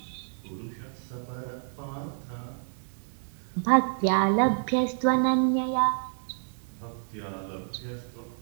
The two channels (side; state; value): left; silent; digital silence